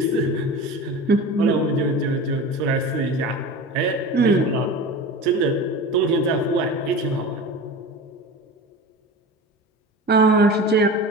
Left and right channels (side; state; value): both; normal; correlation 0.32